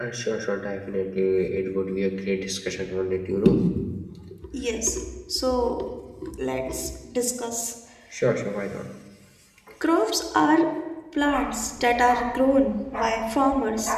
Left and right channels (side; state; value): both; identical; correlation 1.00